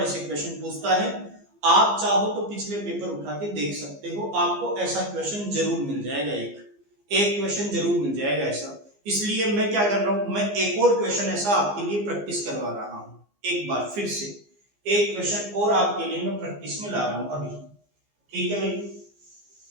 ऐसे क्वेश्चन पूछता है। आप चाहो तो पिछले पेपर उठा के देख सकते हो, आपको ऐसा क्वेश्चन जरूर मिल जाएगा, एक क्वेश्चन जरूर मिल जाएगा ऐसा। इसलिए मैं क्या कर रहा हूं, मैं एक और क्वेश्चन ऐसा आपके लिए प्रैक्टिस करवा रहा हूं, एक बार फिर से एक क्वेश्चन और आपके लिए मैं प्रैक्टिस में ला रहा हूं अभी। ठीक है भाई,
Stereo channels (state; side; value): late; left; 15 ms